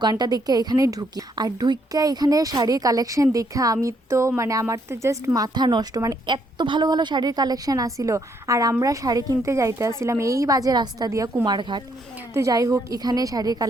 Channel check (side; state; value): both; normal; correlation 0.72